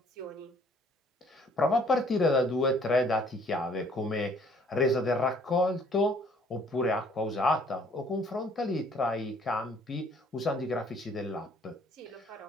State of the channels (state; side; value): normal; both; correlation 0.59